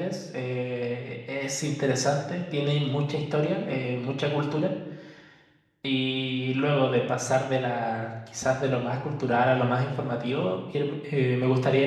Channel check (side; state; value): both; identical; correlation 1.00